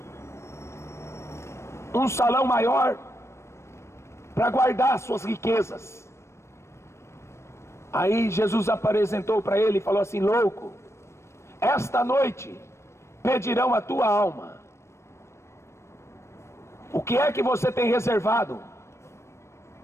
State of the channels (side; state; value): right; late; 0.13 ms